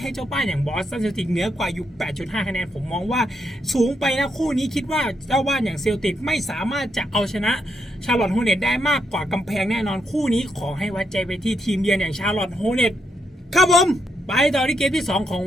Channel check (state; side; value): normal; both; correlation 0.79